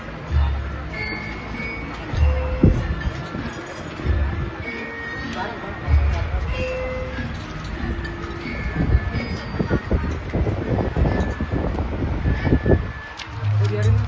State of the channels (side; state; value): both; identical; correlation 1.00